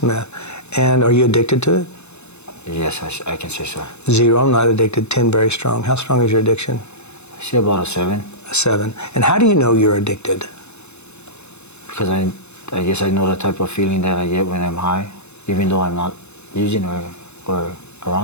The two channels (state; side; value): late; right; 0.81 ms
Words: meth. And are you addicted to it? Yes, I can say so. 0, I'm not addicted. 10, very strong. How strong is your addiction? I say about a 7. A 7. And how do you know you're addicted? Because I guess I know the type of feeling that I get when I'm high, even though I'm not using or